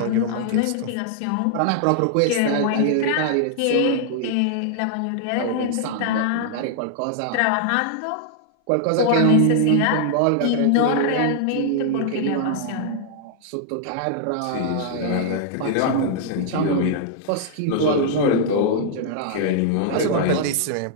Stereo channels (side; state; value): both; different; correlation -0.01